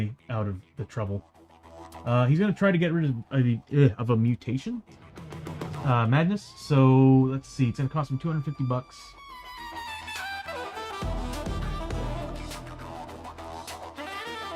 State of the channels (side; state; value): both; identical; correlation 1.00